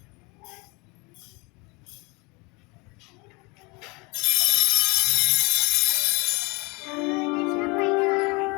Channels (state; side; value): quieter; right; 27.4 dB